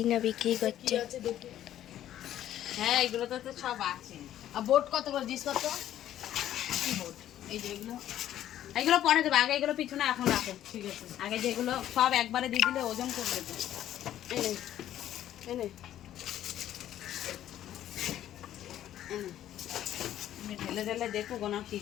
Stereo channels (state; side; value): quieter; right; 12.0 dB